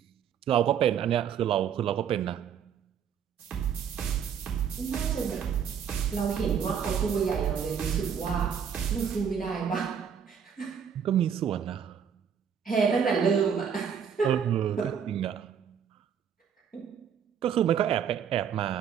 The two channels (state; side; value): quieter; left; 7.7 dB